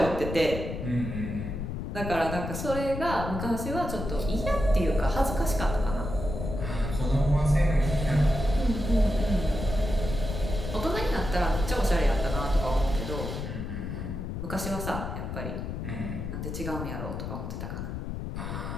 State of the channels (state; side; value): noise; left; rumble, 5 dB below the sound